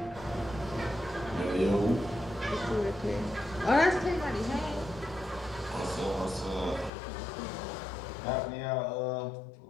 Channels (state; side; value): drops out; right; at 6.9 s